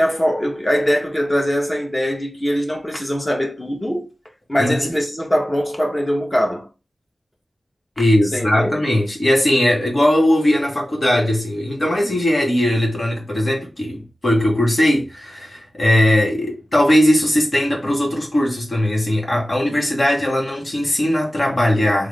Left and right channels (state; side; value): normal; both; correlation 0.95